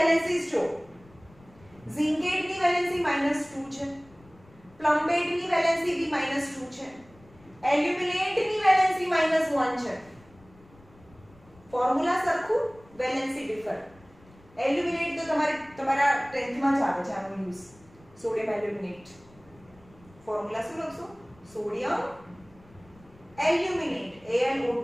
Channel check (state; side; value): noise; left; rumble, 26 dB below the sound